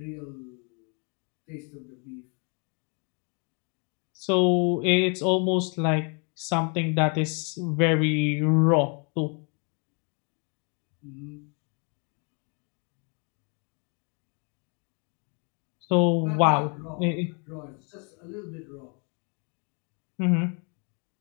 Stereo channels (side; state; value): right; quieter; 36.1 dB